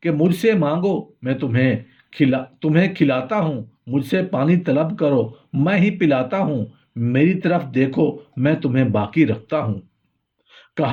کہ مجھ سے مانگو میں تمہیں کھلاتا ہوں، مجھ سے پانی طلب کرو میں ہی پلاتا ہوں، میری طرف دیکھو میں تمہیں باقی رکھتا ہوں۔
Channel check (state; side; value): identical; both; correlation 1.00